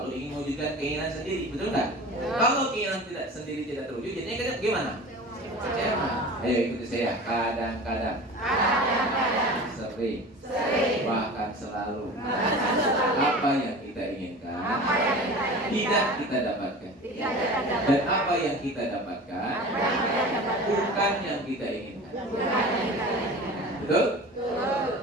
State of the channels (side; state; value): both; normal; correlation 0.36